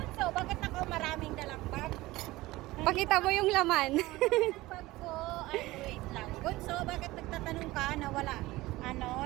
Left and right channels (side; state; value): left; quieter; 18.9 dB